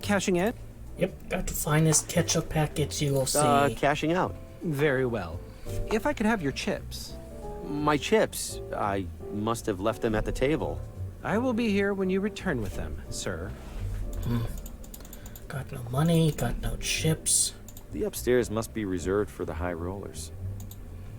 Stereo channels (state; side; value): identical; both; correlation 1.00